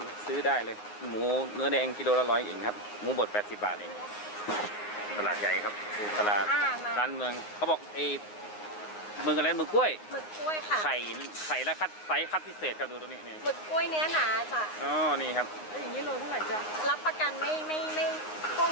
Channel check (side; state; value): right; late; 9.6 ms